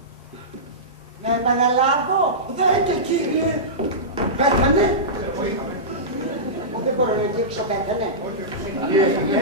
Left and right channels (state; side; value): normal; both; correlation -0.17